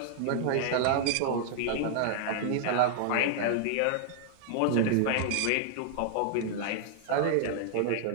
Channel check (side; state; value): both; different; correlation -0.01